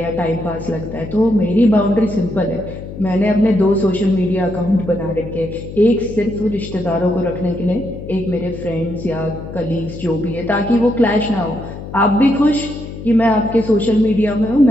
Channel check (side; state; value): left; noise; hum, 11 dB below the sound